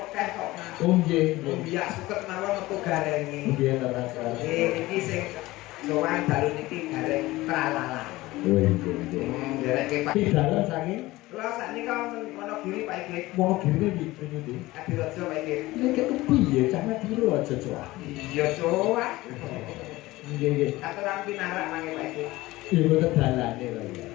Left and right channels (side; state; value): right; quieter; 18.8 dB